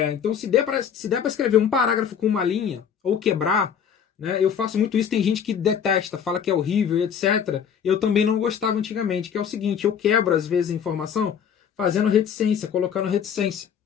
Então, se der para escrever um parágrafo com uma linha, ou quebrar, né? Eu faço muito isso, tem gente que detesta, fala que é horrível, etc. Eu também não gostava antigamente, que é o seguinte, eu quebro, às vezes, a informação fazendo reticência, colocando reticência,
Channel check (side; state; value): right; quieter; 7.9 dB